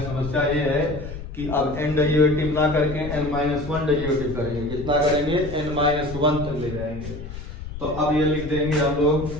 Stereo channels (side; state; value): left; noise; rumble, 10 dB below the sound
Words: समस्या ये है कि अब n डेरिवेटिव ना करके n-1 डेरिवेटिव करेंगे। कितना करेंगे? n-1 तक ले जाएंगे। तो अब ये लिख देंगे हम लोग